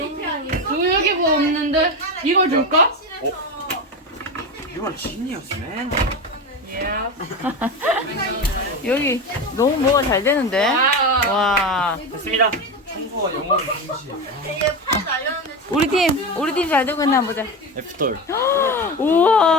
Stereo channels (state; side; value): normal; both; correlation 0.21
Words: 여기 뭐 없는데? 이걸 줄까? You are genius, man. 여기 너무 뭐가 잘 되는데? 와. 됐습니다. 청소와 영어는 동시에. 우리 팀 잘 되고 있나 보자. F-돌.